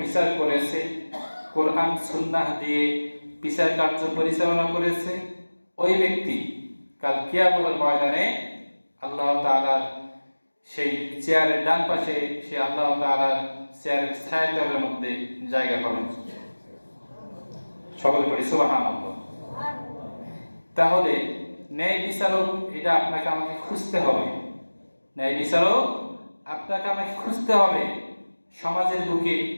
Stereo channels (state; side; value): inverted; both; correlation -1.00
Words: বিচার করেছে, কোরআন সুন্নাহ দিয়ে বিচার কার্য পরিচালনা করেছে, ওই ব্যক্তি কাল কিয়ামতের ময়দানে আল্লাহ তাআলার সেই চেয়ারের ডান পাশে সে আল্লাহ তাআলার চেয়ারের ছায়াতলের মধ্যে জায়গা পাবেন। সকলে পড়ি সুবহানাল্লাহ। তাহলে ন্যায় বিচারক এটা আপনাকে আমাকে খুঁজতে হবে। ন্যায় বিচারক আপনাকে আমাকে খুঁজতে হবে। সমাজের বুকে